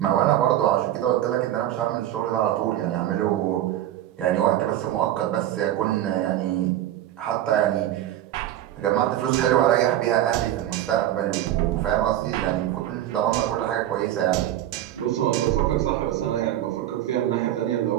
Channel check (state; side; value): quieter; left; 12.6 dB